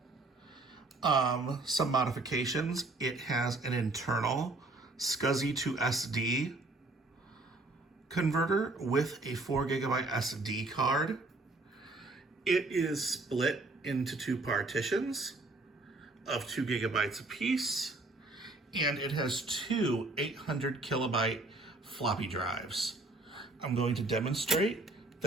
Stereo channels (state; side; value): quieter; left; 3.0 dB